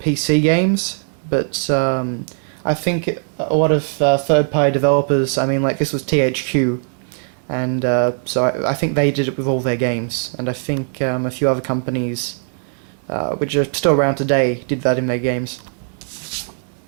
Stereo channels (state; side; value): silent; left; 66 dB below the other